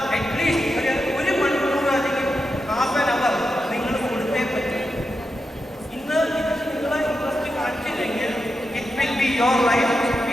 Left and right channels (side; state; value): both; normal; correlation 0.88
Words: അറ്റ്ലീസ്റ്റ് ഒരു മണിക്കൂർ അല്ലെങ്കിൽ ഹാഫ് ആൻ അവർ നിങ്ങൾ കൊടുത്തേ പറ്റും. ഇന്ന് ഇത് നിങ്ങളെ ഇൻട്രസ്റ്റ് കാണിച്ചില്ലെങ്കിൽ it will be your life,